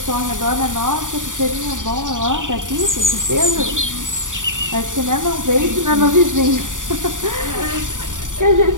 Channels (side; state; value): left; late; 0.87 ms